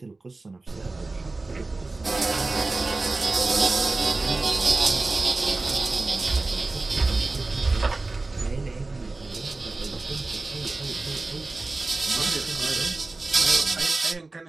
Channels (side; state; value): left; quieter; 3.3 dB